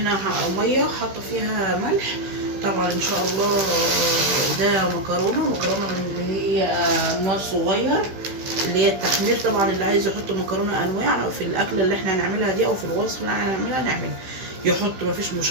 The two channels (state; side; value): late; left; 16 ms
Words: مية حاطة فيها ملح طبعا ان شاء الله. ده مكرونة من اللي هي نوع صغير، اللي هي التحمير. طبعا اللي عايز يحط مكرونة انواع في الاكلة اللي احنا هنعملها دي او في الوصفة اللي احنا هنعملها نعمل يحط، مفيش